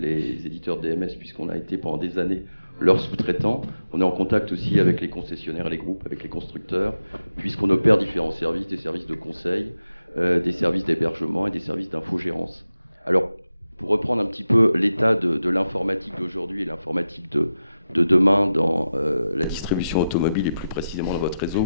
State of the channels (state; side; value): inverted; both; correlation -0.92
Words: éditeurs DMS, puisqu'on a été pendant des années leurs sous-traitants. On est en contact aussi avec les concessionnaires et les groupes, avec les constructeurs, puisqu'on opère différents services, des services de conseil, des services d'hébergement et des services d'infogérance. Alors, pour reprendre un petit peu l'état de l'informatique d'aujourd'hui et l'informatique de demain dans la distribution automobile et plus précisément dans votre